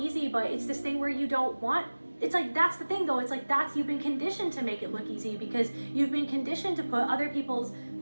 but it's this thing where you don't want. It's like, that's the thing though, it's like you've been conditioned to make it look easy because you've been conditioned to put other people's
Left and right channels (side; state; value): both; inverted; correlation -1.00